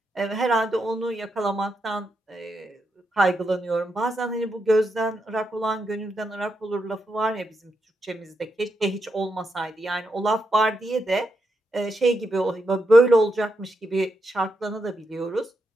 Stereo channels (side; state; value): both; normal; correlation 0.83